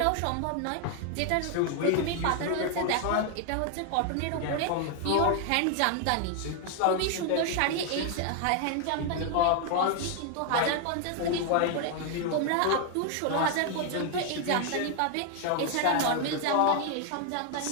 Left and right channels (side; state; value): both; different; correlation 0.00